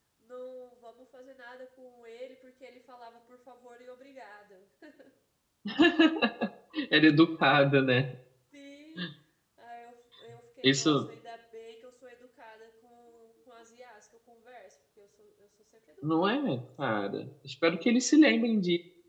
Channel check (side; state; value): both; identical; correlation 1.00